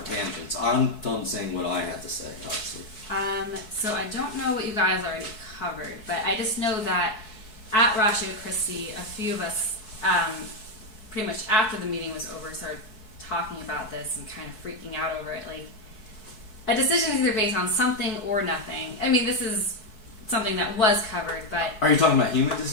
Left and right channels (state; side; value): late; right; 4.6 ms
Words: tangents. I'm done saying what I had to say, obviously. So I don't know what you guys already covered, but I just know that at Ratio Christi, a few of us, pretty much after the meeting was over, started talking about this and kind of freaking out over it. Like, a decision is either based on something or nothing. I mean, this is something that was covered, but... Are you talking about human